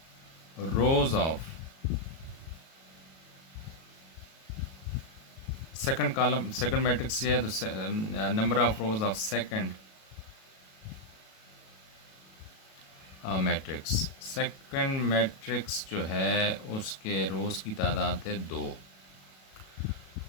rose of second column, second matrix ये है, तो number of rose of second matrix. Second matrix जो है उसके रोज़ की तादाद है 2।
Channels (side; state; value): right; late; 37 ms